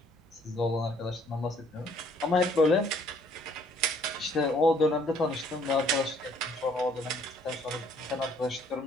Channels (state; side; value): normal; both; correlation 0.62